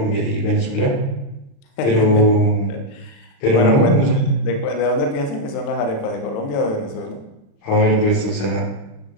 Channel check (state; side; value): late; right; 36 ms